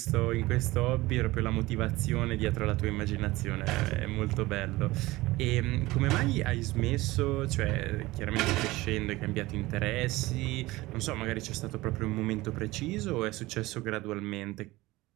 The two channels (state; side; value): quieter; left; 19.5 dB